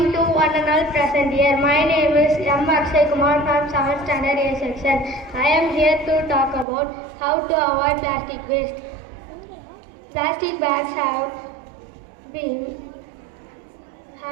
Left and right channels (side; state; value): left; drops out; at 6.7 s